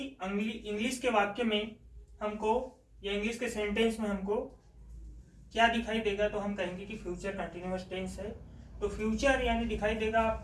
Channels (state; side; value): identical; both; correlation 1.00